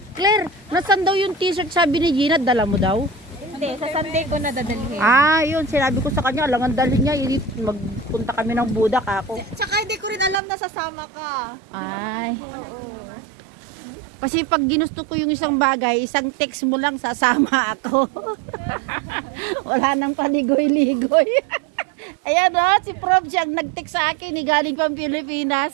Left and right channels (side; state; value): left; drops out; at 10.4 s